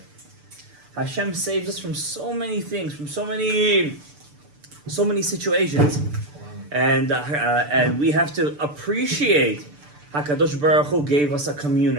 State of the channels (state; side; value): late; left; 6.8 ms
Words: Hashem saves us from so many things, from so many situations, and we have to appreciate. HaKadosh Baruch Hu gave us a